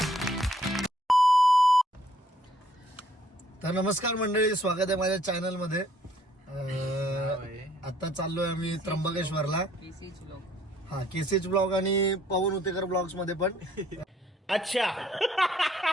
तर नमस्कार मंडळी, स्वागत आहे माझ्या चॅनल मध्ये. आता चाललोय आम्ही त्र्यंबकेश्वरला. हा, केसीएच ब्लॉग आणि पवन उतेकर ब्लॉग्स मध्ये पण. अच्छा.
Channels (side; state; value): both; normal; correlation 0.64